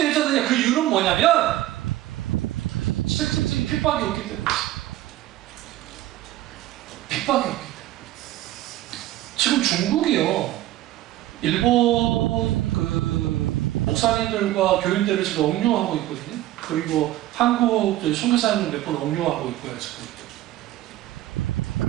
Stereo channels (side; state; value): left; quieter; 14.8 dB